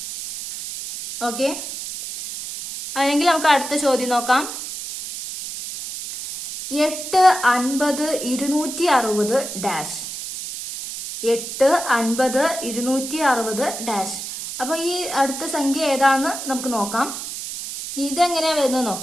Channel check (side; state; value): right; noise; hiss, 8 dB below the sound